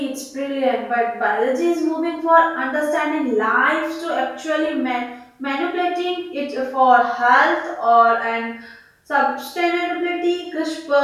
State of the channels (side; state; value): both; identical; correlation 1.00